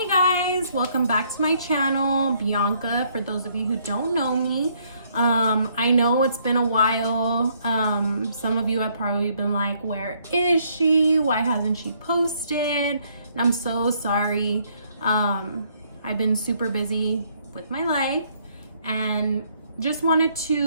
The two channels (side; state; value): both; inverted; correlation -0.68